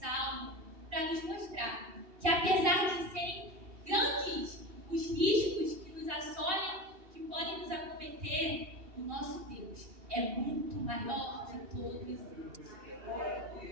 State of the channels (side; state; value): left; late; 2.7 ms